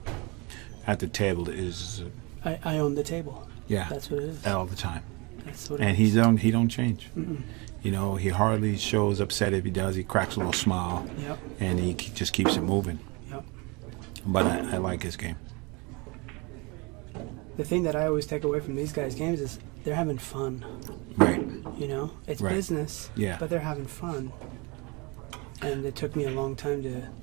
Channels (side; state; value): left; quieter; 28.0 dB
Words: at the table is I own the table. yeah, That's what it is. all the time. That's what And it he is. don't change. You know, he hardly shows upset. If he does, he cracks a little smile, Yep. and he just keeps it moving. Yep. But I like his game. The thing that I always take away from these guys' games is they're having fun. Right. You know, it's Right. business, Yeah. but they're having fun. And it took me a long time